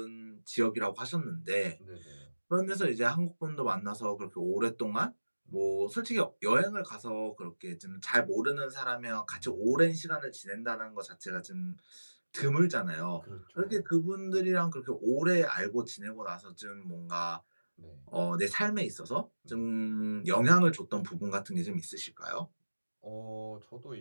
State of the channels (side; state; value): both; inverted; correlation -1.00